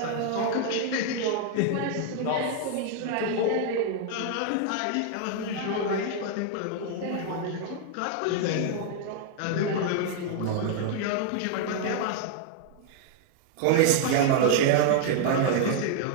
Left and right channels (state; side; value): different; both; correlation 0.00